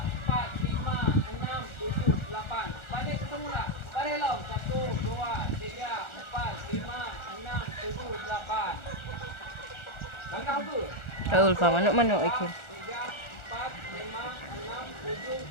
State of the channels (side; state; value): right; late; 1.4 ms